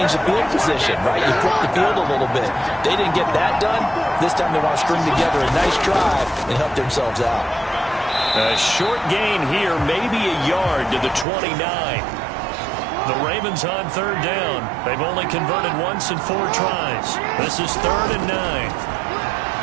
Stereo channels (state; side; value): drops out; left; at 11.2 s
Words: the field position, right? You flip the field a little bit. They didn't get that done. This time they want to string together a nice drive and help themselves out. A short gain here, maybe a yard to the 29. The Ravens on 3rd down. They've only converted once in 4 tries. This is 3rd and 9.